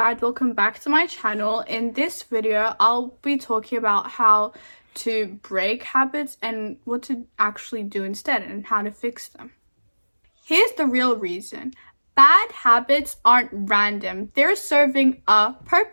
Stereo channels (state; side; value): inverted; both; correlation -1.00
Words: Welcome back to my channel. In this video, I'll be talking about how to break habits and what to actually do instead and how to fix them. Here's the real reason. Bad habits aren't random. They're serving a